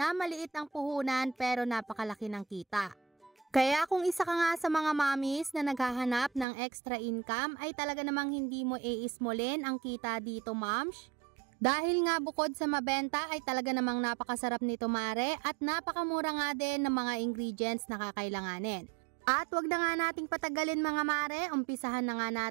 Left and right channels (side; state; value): left; drops out; at 6.5 s